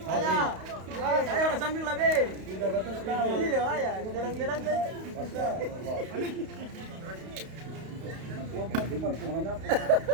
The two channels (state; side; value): late; left; 32 ms